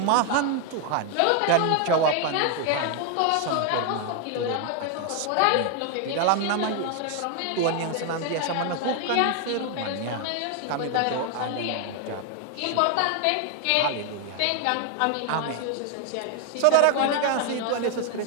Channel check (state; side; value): different; both; correlation 0.01